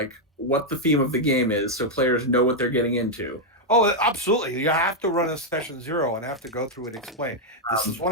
what the theme of the game is, so players know what they're getting into. Oh, absolutely. You have to run a session 0 and have to go through and explain. This is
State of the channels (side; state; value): both; normal; correlation -0.01